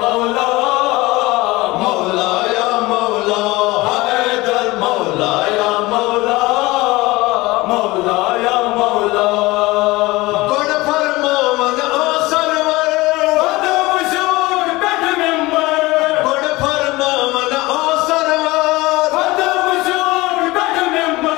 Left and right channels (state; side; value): quieter; right; 20.9 dB